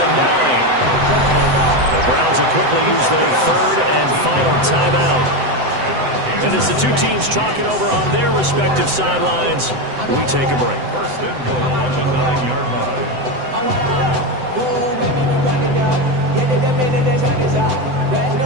the 9. The Browns will quickly use their 3rd and final timeout. And as the two teams talking over on their respective sidelines, we take a break. First and goal at the 9-yard line.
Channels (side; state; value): left; late; 7.9 ms